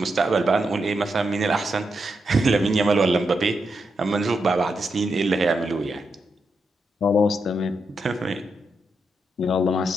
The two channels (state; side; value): normal; both; correlation 0.84